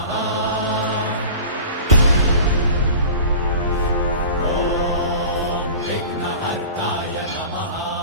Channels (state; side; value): inverted; both; correlation -0.37